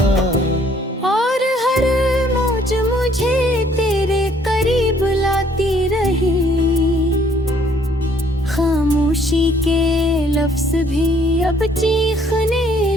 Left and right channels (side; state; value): both; normal; correlation 0.62